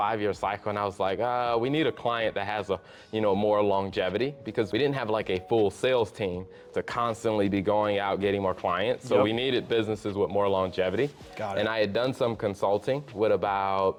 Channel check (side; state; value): both; identical; correlation 1.00